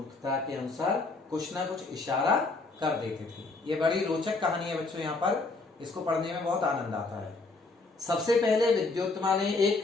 के अनुसार कुछ ना कुछ इशारा कर देते थे। ये बड़ी रोचक कहानी है बच्चों, यहाँ पर इसको पढ़ने में बहुत आनंद आता है। सबसे पहले विद्योत्तमा ने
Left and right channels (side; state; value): right; quieter; 3.6 dB